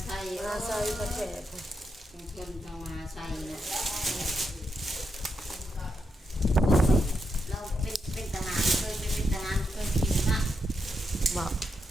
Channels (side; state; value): both; normal; correlation 0.83